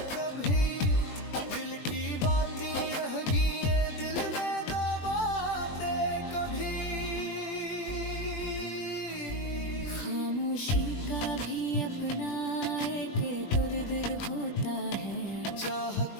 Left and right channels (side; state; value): right; late; 20 ms